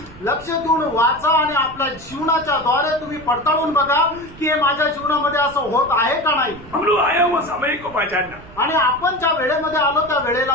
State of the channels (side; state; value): right; noise; rumble, 19 dB below the sound